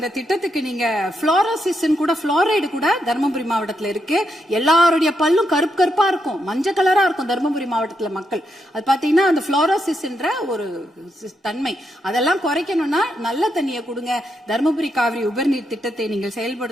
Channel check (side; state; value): both; normal; correlation 0.81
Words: திட்டத்துக்கு நீங்க புளோரோசிஸ் கூட, புளோரைடு கூட தர்மபுரி மாவட்டத்துல இருக்கு. எல்லாருடைய பல்லும் கருப்பு கருப்பா இருக்கும், மஞ்சள் கலரா இருக்கும் தர்மபுரி மாவட்டத்துல மக்கள். அது பாத்தீங்கன்னா அந்த புளோரோசிஸ் என்ற ஒரு தன்மை, அதெல்லாம் குறைக்கணும்னா நல்ல தண்ணியை கொடுங்க. செய்யுங்க. தருமபுரி காவிரி உபர்நீர் திட்டத்தை நீங்கள்